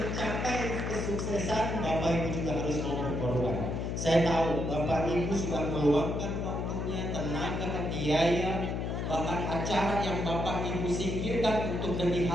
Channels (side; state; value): left; noise; hum, 2 dB below the sound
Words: kesuksesan Bapak Ibu juga harus mau berkorban. Saya tahu Bapak Ibu sudah meluangkan waktunya, tenaga, biaya, bahkan acara yang Bapak Ibu singkirkan untuk demi